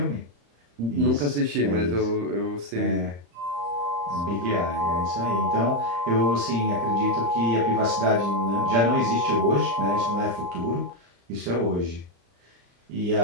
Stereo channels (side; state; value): left; late; 35 ms